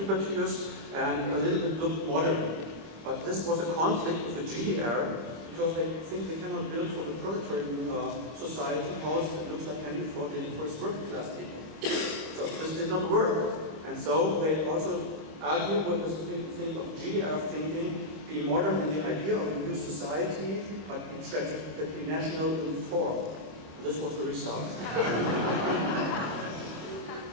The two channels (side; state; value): left; late; 26 ms